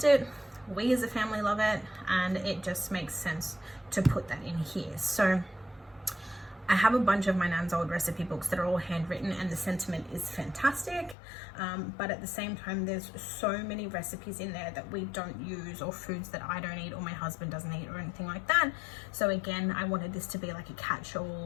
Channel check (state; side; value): drops out; right; at 11.2 s